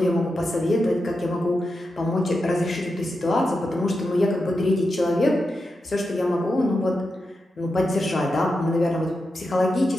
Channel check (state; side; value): normal; both; correlation 0.88